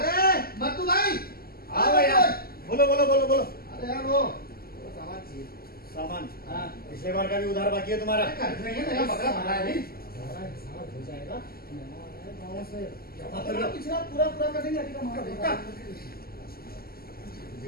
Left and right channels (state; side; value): late; right; 0.44 ms